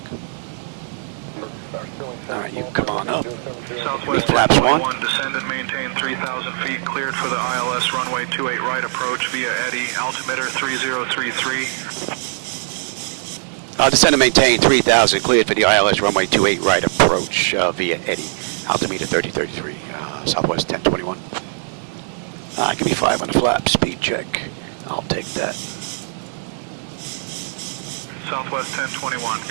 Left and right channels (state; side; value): silent; left; 65 dB below the other